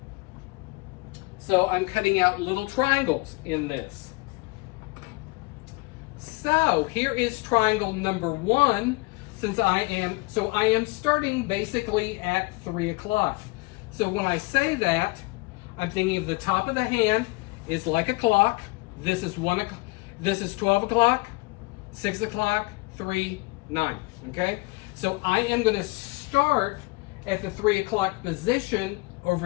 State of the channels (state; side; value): quieter; right; 25.1 dB